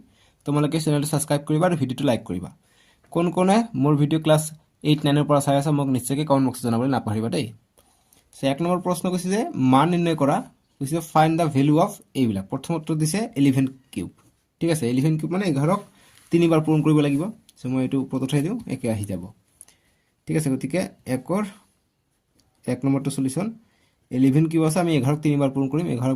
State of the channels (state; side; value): identical; both; correlation 1.00